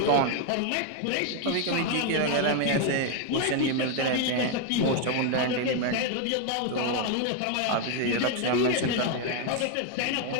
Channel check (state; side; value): different; both; correlation 0.01